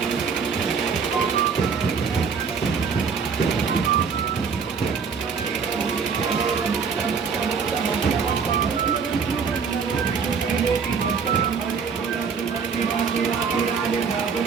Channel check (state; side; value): quieter; left; 5.8 dB